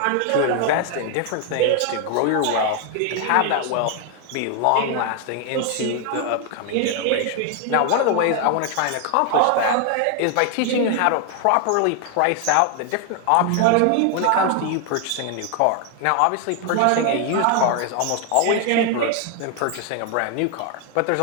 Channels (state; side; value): different; both; correlation 0.00